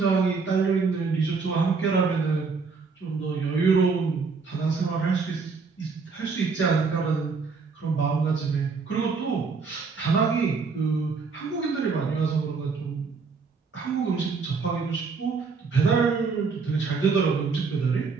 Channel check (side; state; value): left; quieter; 4.8 dB